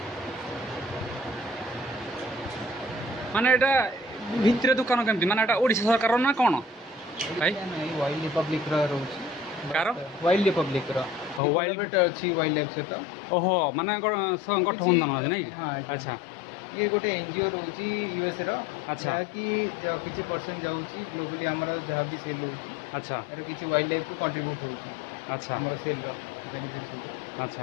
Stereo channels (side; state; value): right; drops out; at 11.4 s